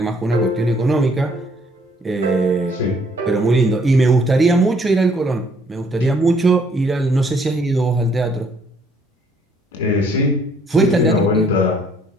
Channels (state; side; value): normal; both; correlation 0.64